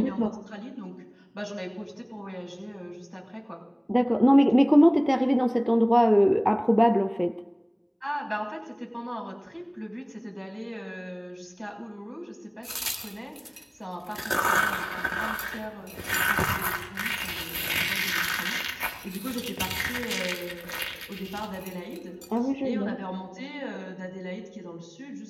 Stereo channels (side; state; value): both; identical; correlation 1.00